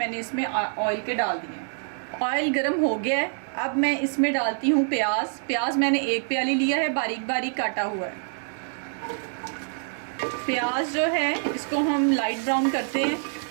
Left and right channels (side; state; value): left; silent; 61 dB below the other